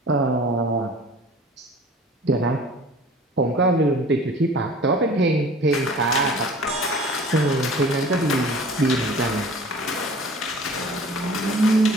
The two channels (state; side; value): normal; both; correlation 0.45